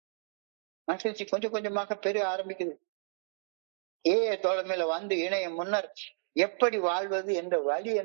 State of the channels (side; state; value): left; silent; digital silence